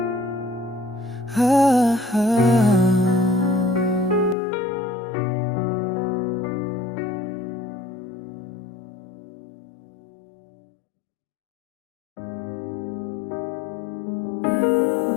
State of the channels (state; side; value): drops out; right; at 4.4 s